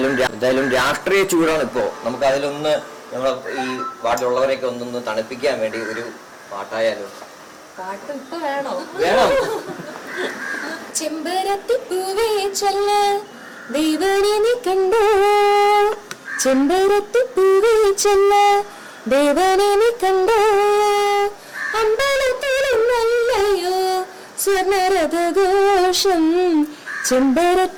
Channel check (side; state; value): both; identical; correlation 1.00